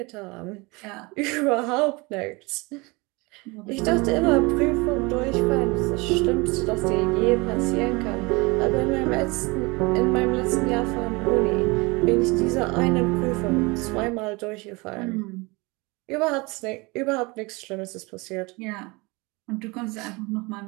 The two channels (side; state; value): left; quieter; 25.8 dB